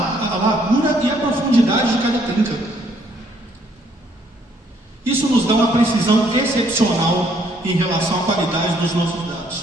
e a profundidade de cada trinca. Isso nos dá uma precisão excepcional em relação à qualidade dos nossos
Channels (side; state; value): both; normal; correlation 0.67